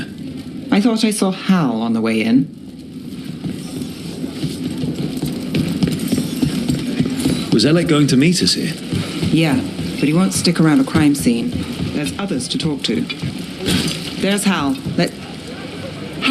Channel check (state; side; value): identical; both; correlation 1.00